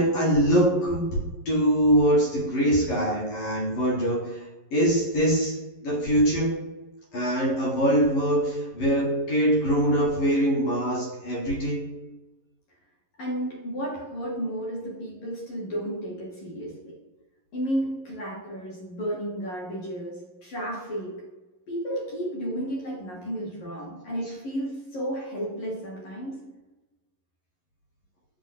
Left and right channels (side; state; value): right; late; 11 ms